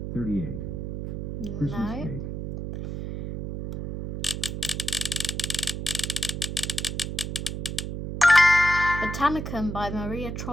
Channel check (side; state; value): right; noise; hum, 5 dB below the sound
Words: 38. Christmas No. Cake. Botanicum by Maria